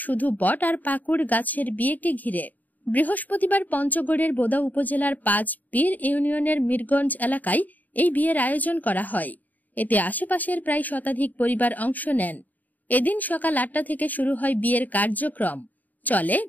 শুধু বট আর পাকুড় গাছের বিয়েকে ঘিরে। বৃহস্পতিবার পঞ্চগড়ের বোদা উপজেলার ৫ পীর ইউনিয়নের মিরগঞ্জ এলাকায় এই বিয়ের আয়োজন করা হয়। এতে আশেপাশের প্রায় শতাধিক পরিবার অংশ নেন। এদিন সকাল ৮টা থেকে শুরু হয় বিয়ের কার্যক্রম, চলে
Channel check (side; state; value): right; late; 0.082 ms